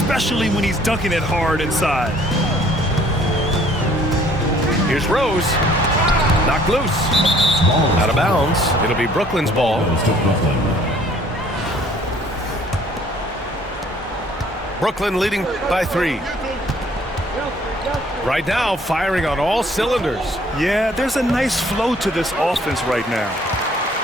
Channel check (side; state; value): both; normal; correlation 0.58